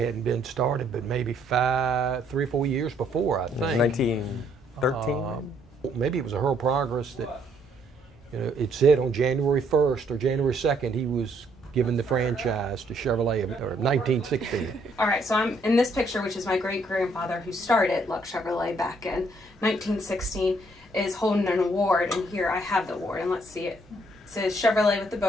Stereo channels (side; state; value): both; normal; correlation 0.68